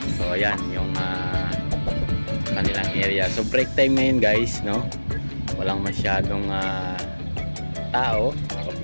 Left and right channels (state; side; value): inverted; both; correlation -1.00